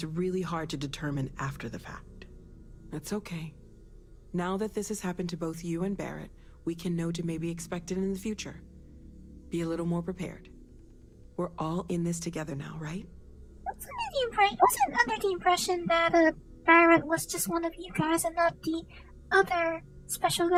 really hard to determine after the fact. That's okay. Now that this has happened to both you and Barrett, we can know to maybe expect it in the future. Be a little more prepared. We're all in this together now, right? I wasn't under the impression that Barrett was just one of you guys and not the other special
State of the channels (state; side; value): identical; both; correlation 1.00